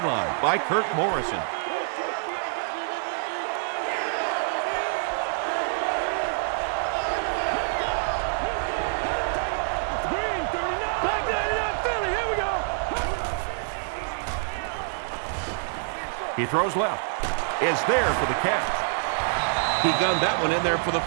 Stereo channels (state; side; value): silent; left; digital silence